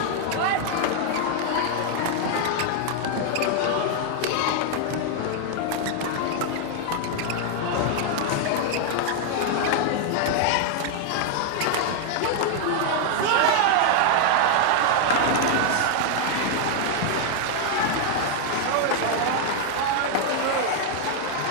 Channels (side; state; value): both; different; correlation 0.00